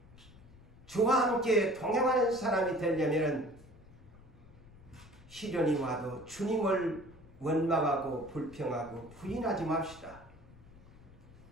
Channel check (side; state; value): left; noise; rumble, 22 dB below the sound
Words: 주와 함께 동행하는 사람이 되려면 시련이 와도 주님을 원망하고 불평하고 부인하지 맙시다.